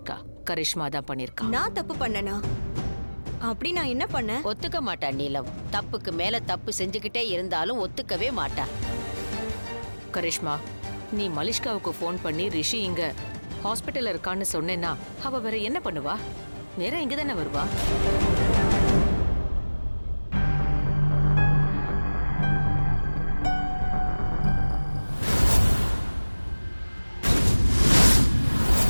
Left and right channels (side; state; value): both; inverted; correlation -1.00